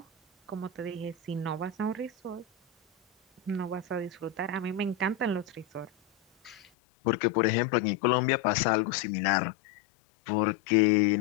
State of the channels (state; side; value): drops out; right; at 6.6 s